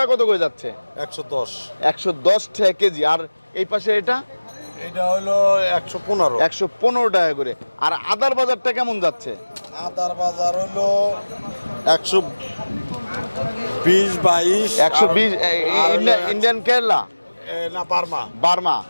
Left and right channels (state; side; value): inverted; both; correlation -1.00